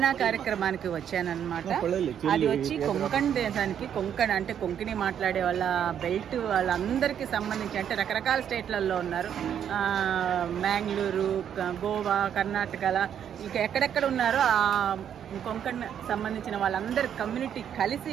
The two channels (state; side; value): quieter; left; 9.1 dB